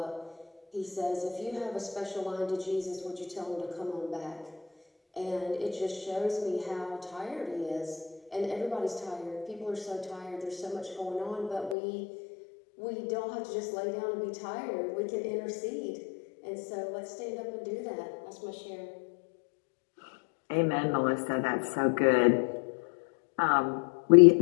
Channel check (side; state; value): right; drops out; at 11.8 s